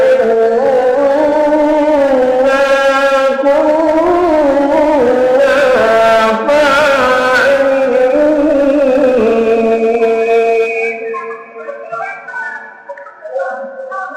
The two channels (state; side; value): identical; both; correlation 1.00